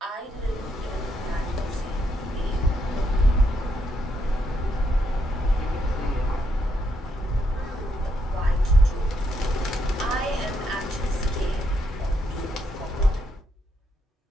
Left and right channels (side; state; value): both; normal; correlation 0.77